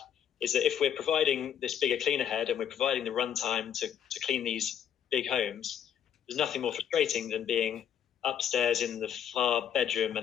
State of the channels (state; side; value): quieter; right; 9.2 dB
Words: is that if we're providing this bigger cleaner head and we're providing the runtime to clean these big homes, there's nothing more frustrating than being upstairs in the far bedroom